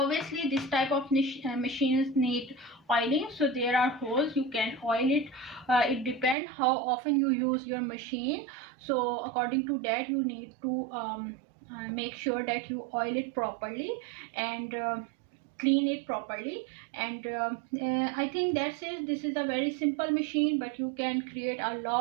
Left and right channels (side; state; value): left; drops out; at 6.4 s